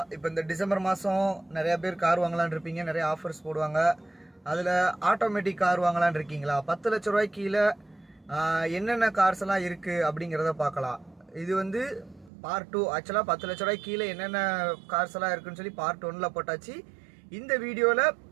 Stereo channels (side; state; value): left; drops out; at 12.3 s